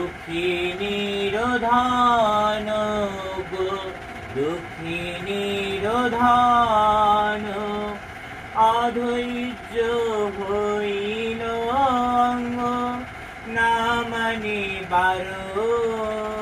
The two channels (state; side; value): identical; both; correlation 1.00